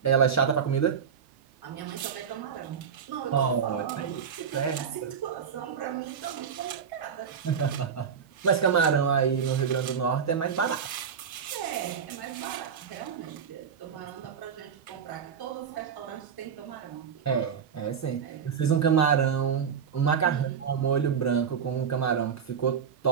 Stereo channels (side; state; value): left; quieter; 7.1 dB